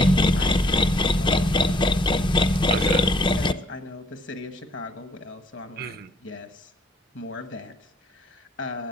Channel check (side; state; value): both; normal; correlation 0.64